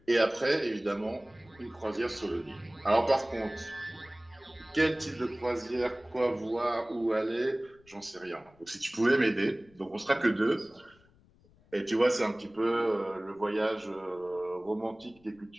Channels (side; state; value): left; noise; rumble, 29 dB below the sound